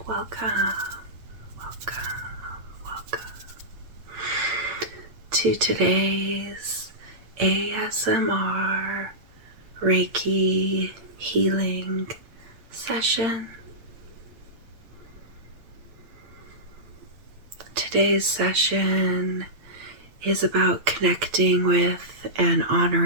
welcome to today's ASMR Reiki healing session. Today's session is about connecting with and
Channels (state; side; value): late; left; 8.8 ms